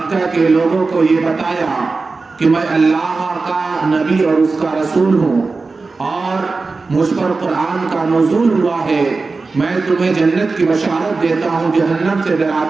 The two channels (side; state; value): left; quieter; 4.0 dB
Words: کے لوگوں کو یہ بتایا کہ میں اللہ کا نبی اور اس کا رسول ہوں اور مجھ پر قرآن کا نزول ہوا ہے، میں تمہیں جنت کی بشارت دیتا ہوں، جہنم سے